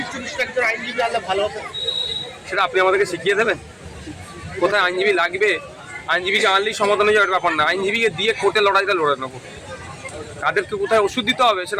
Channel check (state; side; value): identical; both; correlation 1.00